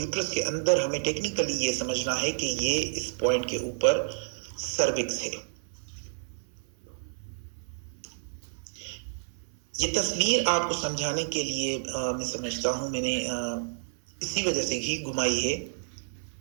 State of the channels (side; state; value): left; silent; 58 dB below the other